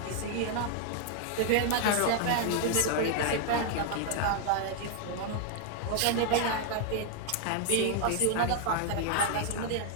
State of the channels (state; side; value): different; both; correlation 0.00